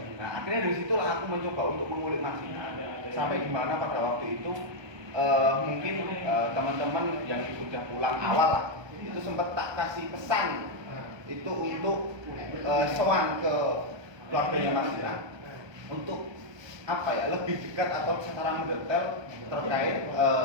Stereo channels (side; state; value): left; late; 1.2 ms